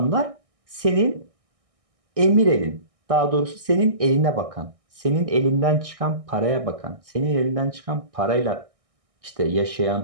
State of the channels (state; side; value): late; left; 1.6 ms